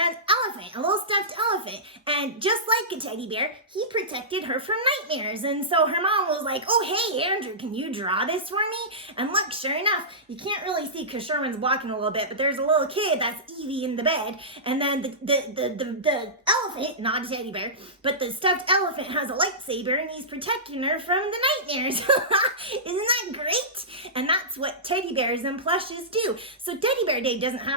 elephant, a little stuffed elephant, and just like a teddy bear, he protected her from nightmares. And so her mom was like, oh, hey, Andrew, can you draw this for me? And look, sure enough, you can't really see because Sherman's walking a little bit, but there's a little kid, that's Evie in the bed, and then the elephant, not a teddy bear, but the stuffed elephant has a lightsaber and he's protecting her from the nightmares. Isn't that great? And that's what teddy bears and plushes do. So Teddy Bear Day doesn't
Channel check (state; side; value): normal; both; correlation -0.18